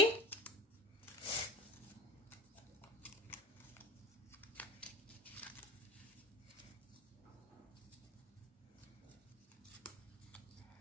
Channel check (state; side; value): normal; both; correlation 0.34